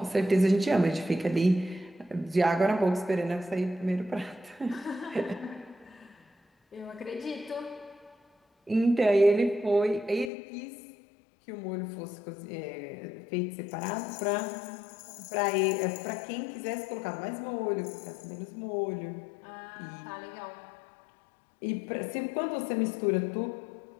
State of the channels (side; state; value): right; drops out; at 10.3 s